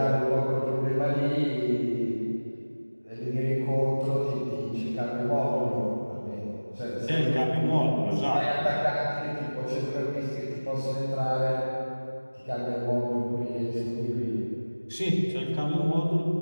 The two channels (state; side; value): inverted; both; correlation -1.00